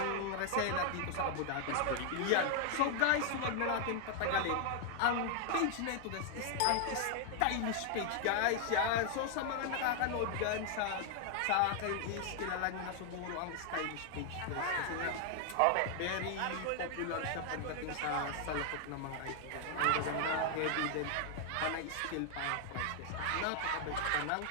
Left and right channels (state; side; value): different; both; correlation 0.00